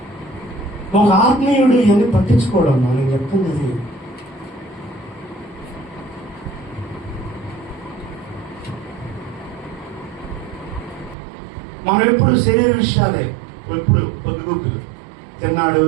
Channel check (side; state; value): left; drops out; at 11.2 s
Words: ఒక ఆత్మీయుడు ఇవన్నీ పట్టించుకోవడం నేను చెప్తున్నది. మనం ఎప్పుడు శరీర విషయాలే, ఎప్పుడు పొద్దుగుకులు తిన్నాడు,